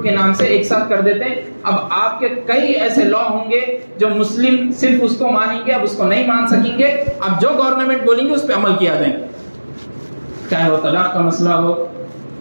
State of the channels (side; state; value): both; inverted; correlation -1.00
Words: کے نام سے ایک ساتھ کر دیتے ہیں۔ اب آپ کے کئی ایسے لا ہوں گے جو مسلم صرف اس کو مانیں گے، اب اس کو نہیں مان سکیں گے، اب جو گورنمنٹ بولیں گے اس پہ عمل کیا جائیں گے، چاہے وہ طلاق کا مسئلہ ہو،